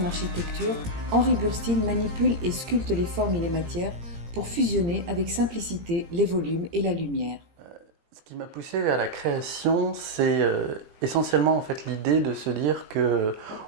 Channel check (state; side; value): late; left; 17 ms